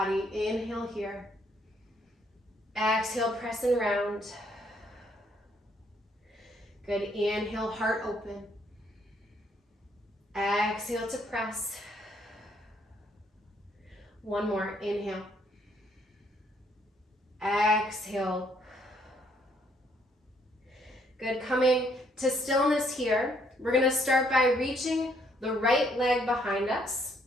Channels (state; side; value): normal; both; correlation 0.68